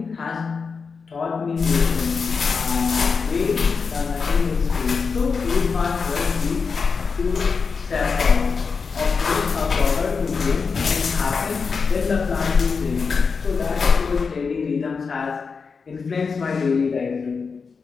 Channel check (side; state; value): right; quieter; 5.2 dB